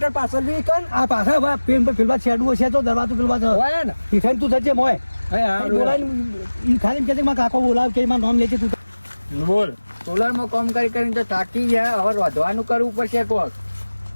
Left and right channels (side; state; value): both; inverted; correlation -1.00